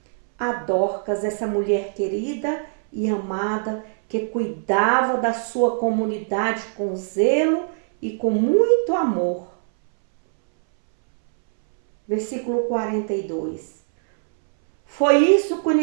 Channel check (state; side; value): silent; left; 63 dB below the other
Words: a Dorcas, essa mulher querida e amada, que cuidava da sua comunidade com zelo e com muito amor. Versículo 42. Foi isso